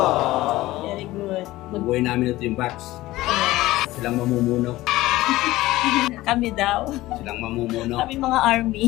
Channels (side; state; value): right; quieter; 17.5 dB